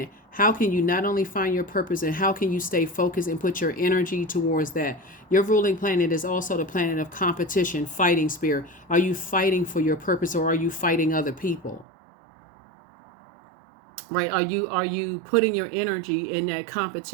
How can you not only find your purpose, and how can you stay focused and put your energy towards that? Your ruling planet is also the planet of competition, fighting spirit. Are you fighting for your purpose, or are you fighting other people? Right? Are you putting your energy in that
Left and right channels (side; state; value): left; drops out; at 11.9 s